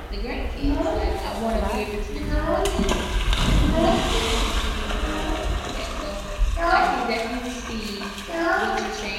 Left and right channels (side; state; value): both; identical; correlation 1.00